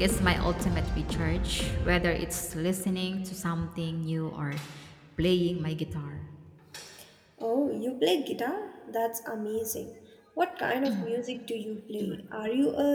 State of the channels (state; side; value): identical; both; correlation 1.00